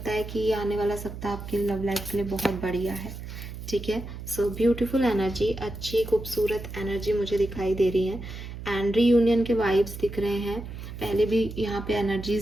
है कि ये आने वाला सप्ताह आपकी लव लाइफ के लिए बहुत बढ़िया है, ठीक है। सो ब्यूटीफुल एनर्जी, अच्छी खूबसूरत एनर्जी मुझे दिखाई दे रही है, एंड रीयूनियन के वाइब्स दिख रहे हैं। पहले भी यहाँ पे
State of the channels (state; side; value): noise; right; hum, 10 dB below the sound